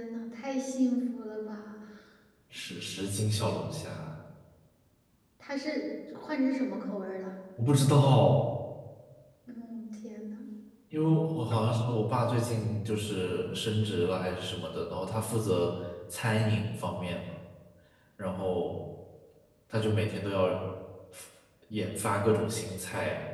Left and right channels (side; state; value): both; identical; correlation 1.00